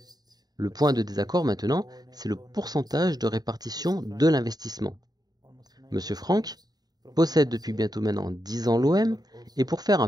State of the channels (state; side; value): late; left; 0.19 ms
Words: Le point de désaccord maintenant, c'est le pourcentage de répartition de l'investissement. Monsieur Frank possède depuis bientôt maintenant 10 ans l'OM, et pour faire un